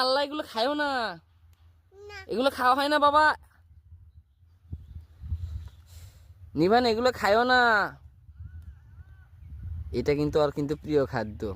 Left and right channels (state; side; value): identical; both; correlation 1.00